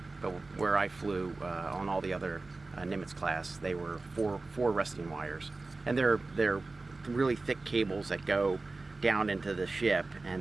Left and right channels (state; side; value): quieter; left; 3.5 dB